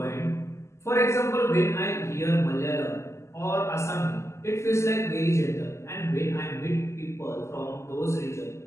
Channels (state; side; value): late; right; 0.13 ms